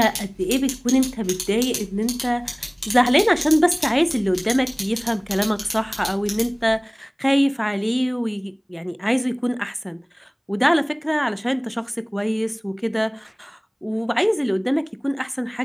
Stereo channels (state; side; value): identical; both; correlation 1.00